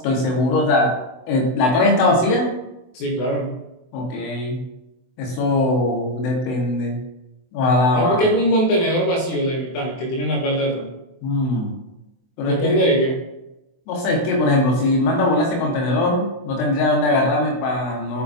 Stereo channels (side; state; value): right; late; 24 ms